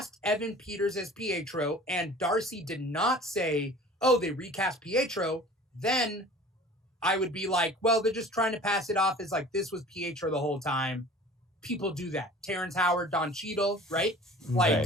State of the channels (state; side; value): normal; both; correlation 0.44